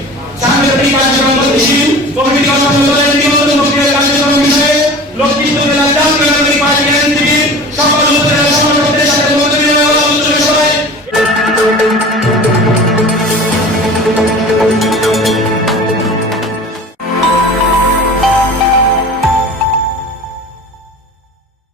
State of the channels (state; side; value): normal; both; correlation 0.39